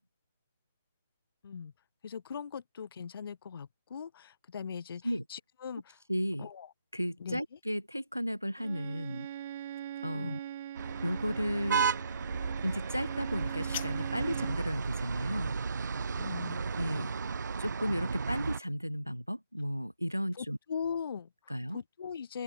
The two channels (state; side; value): inverted; both; correlation -0.81